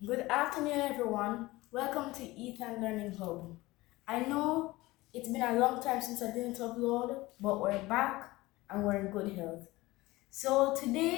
Good afternoon, everyone. Welcome to Ethan Learning Hub. I know it's been a long time since I didn't upload, but we're back and we're in good health. So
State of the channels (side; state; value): right; quieter; 19.7 dB